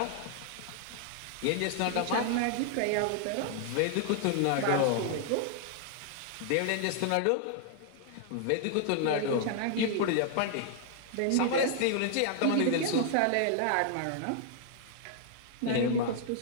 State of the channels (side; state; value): both; different; correlation 0.00